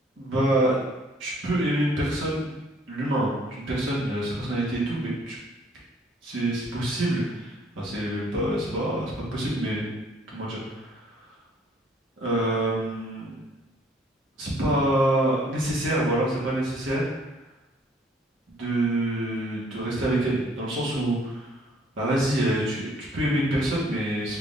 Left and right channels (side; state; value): both; normal; correlation 0.61